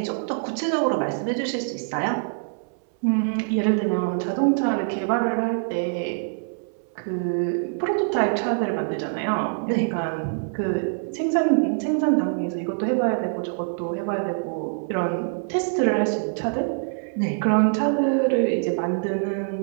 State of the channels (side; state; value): left; silent; 62 dB below the other